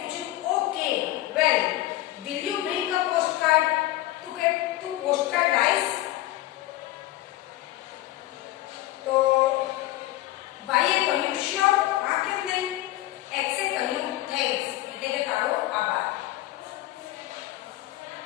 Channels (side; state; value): right; quieter; 16.0 dB